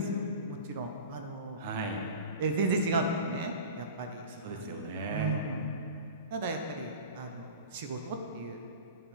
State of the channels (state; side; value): inverted; both; correlation -0.34